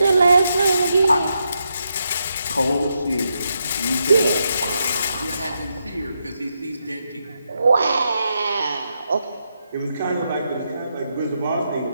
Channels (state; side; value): inverted; both; correlation -0.83